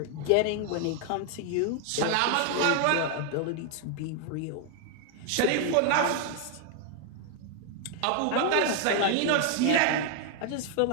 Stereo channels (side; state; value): both; different; correlation 0.00